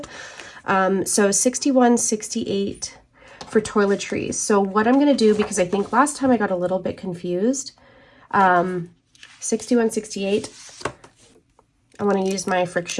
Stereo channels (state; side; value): identical; both; correlation 1.00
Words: 61.68 for toiletries. So what I'm gonna do, because I think last time I got a little bit confused, 61.68, I want to use my